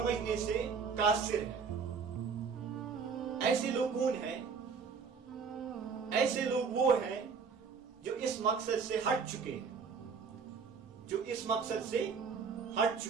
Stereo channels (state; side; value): quieter; left; 5.6 dB